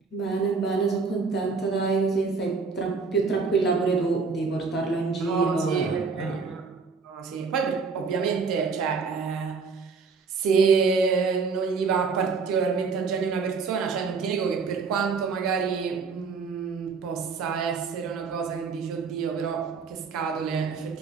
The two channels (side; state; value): left; quieter; 4.9 dB